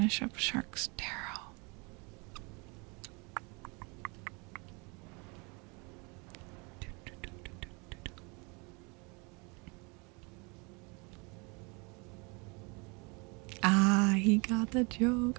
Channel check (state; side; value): quieter; left; 30.2 dB